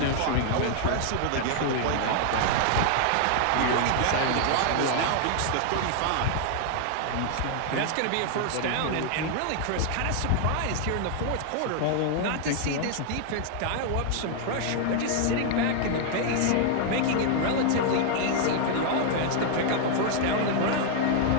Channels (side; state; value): both; different; correlation 0.00